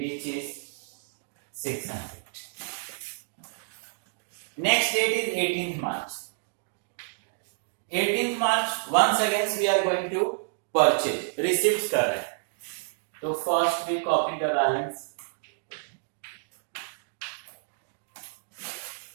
is 600. Next date is 18th March. 18th March once again we are going to purchase. Receipts कर रहे हैं, तो first we copy the balance.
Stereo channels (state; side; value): silent; left; digital silence